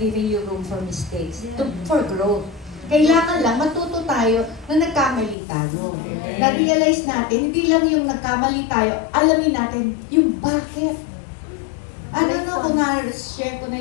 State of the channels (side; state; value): right; drops out; at 5.4 s